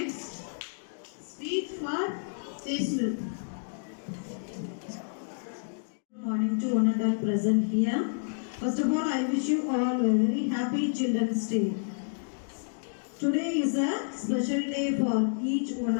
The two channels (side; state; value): right; silent; digital silence